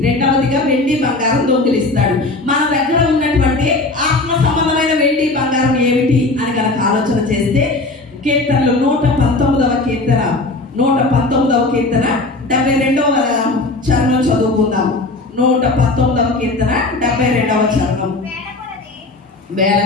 రెండవదిగా వెండి బంగారం దొంగిలిస్తాడు. మన దగ్గర ఉన్నటువంటి ఆత్మ సంబంధమైన వెండి బంగారం ఏమిటి అని కనుక ఆలోచన చేస్తే కీర్తనలు 119వ కీర్తన 72వ చరణం చదువుకుందాం. 119వ కీర్తన 72వ చరణం. వేల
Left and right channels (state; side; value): quieter; right; 3.1 dB